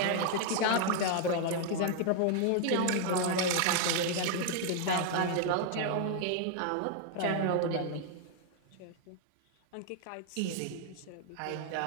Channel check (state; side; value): different; both; correlation 0.00